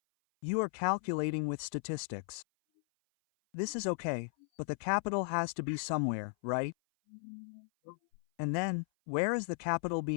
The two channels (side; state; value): right; silent; 54 dB below the other